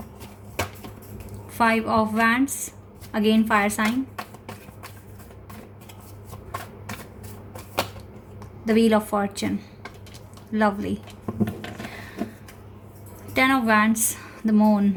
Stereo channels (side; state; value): both; identical; correlation 1.00